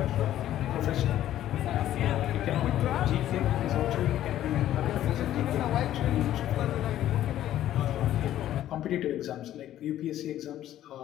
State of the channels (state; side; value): quieter; right; 12.5 dB